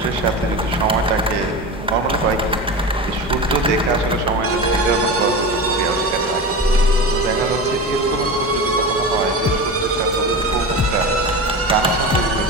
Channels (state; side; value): normal; both; correlation 0.27